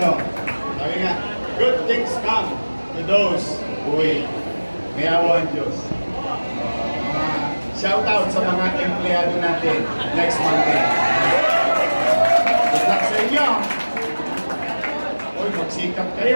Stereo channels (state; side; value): inverted; both; correlation -1.00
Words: Sabi nga, good things come to those who wait. May awa ang Diyos. Shout out sa mga empleyado natin next Monday. Good luck sa inyo. Uy, magsikap